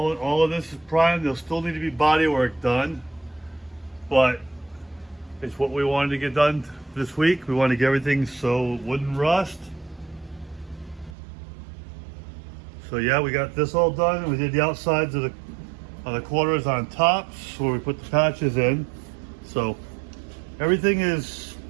of this is primed. There'll still need to be body work done. But It's what we wanted to get done this week. We wanted to get everything so it wouldn't rust. So yeah, we got this all done. We did the outsides of the quarters on tops where we put the patches in. So everything is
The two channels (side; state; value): left; drops out; at 11.2 s